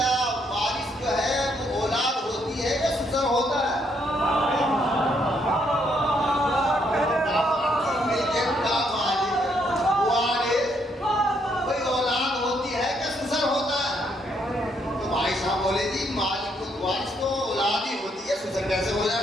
وارث جو ہے وہ اولاد ہوتی ہے یا سسر ہوتا ہے؟ کیسے ہو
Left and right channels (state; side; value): normal; both; correlation 0.73